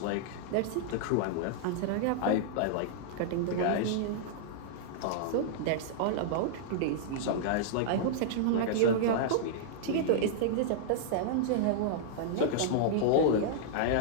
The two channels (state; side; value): different; both; correlation -0.01